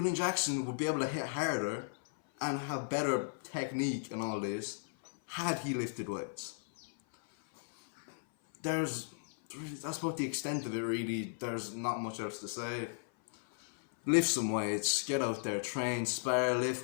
Jackson would be able to hit harder and have better technique and all this had he lifted weights. That's about the extent of it really. There's not much else to say. Lift some weights, get out there, train, spar, lift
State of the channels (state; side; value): silent; right; 54 dB below the other